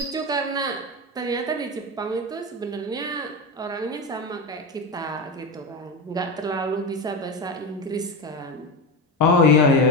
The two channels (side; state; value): both; normal; correlation 0.18